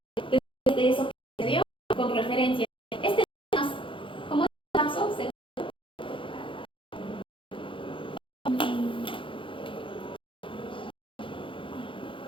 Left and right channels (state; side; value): late; right; 0.25 ms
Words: de eso que se dio con referencia. Este es más, como es el caso,